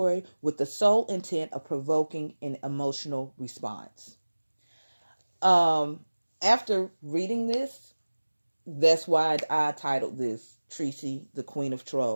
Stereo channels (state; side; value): inverted; both; correlation -1.00